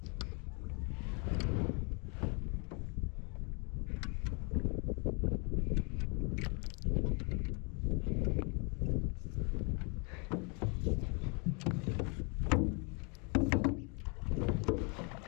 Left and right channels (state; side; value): quieter; right; 34.5 dB